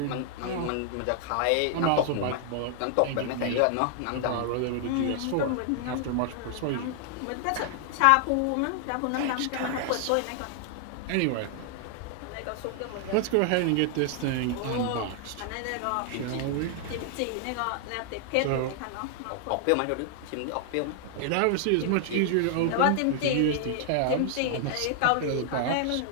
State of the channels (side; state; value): both; different; correlation 0.00